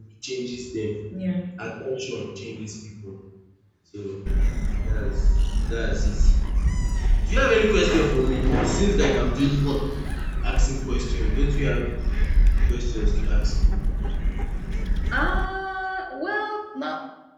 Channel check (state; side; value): identical; both; correlation 1.00